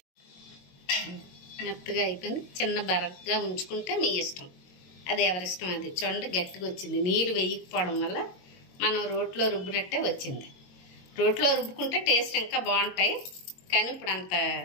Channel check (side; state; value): right; late; 22 ms